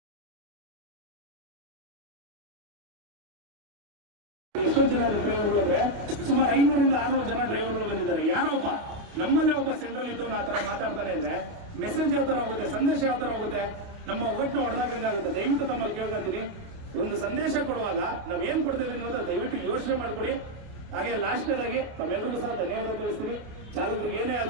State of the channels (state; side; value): late; left; 28 ms